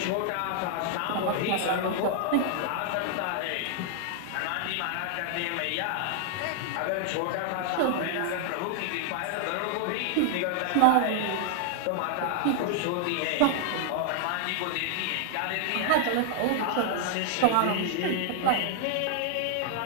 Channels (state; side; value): different; both; correlation 0.00